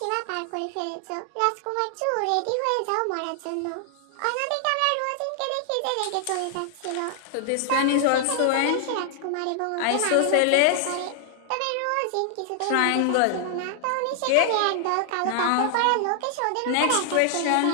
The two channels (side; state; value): both; different; correlation 0.00